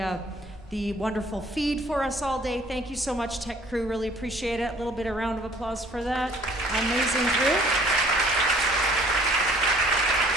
wonderful feed for us all day. Thank you so much, tech crew. Really appreciate it. A little bit of round of applause for that amazing crew.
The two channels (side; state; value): both; normal; correlation 0.56